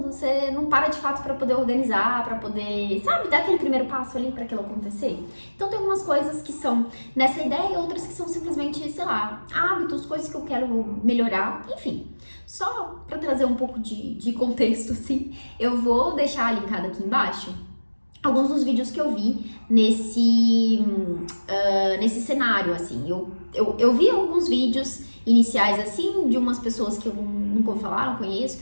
você não para de fato pra poder organizar, pra poder, sabe, dar aquele primeiro passo ali pra aquilo acontecer. Então tem algumas coisas que são nessa ideia e outras que são simplesmente, sei lá, hábitos, coisas que eu quero melhorar, enfim. Só pra trazer um pouco de contexto, assim, eu vou deixar linkado aqui embaixo alguns dos vídeos que eu vi nesse cenário, assim. Eu vi alguns vídeos iniciais, assim, de umas pessoas que eu nunca ouvi falar, não conheço,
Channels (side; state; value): both; inverted; correlation -1.00